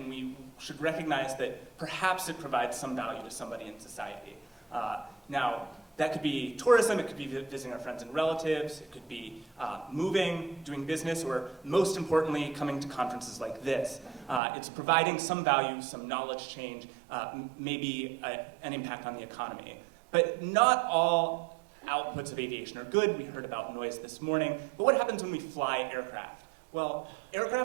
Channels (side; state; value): left; drops out; at 14.4 s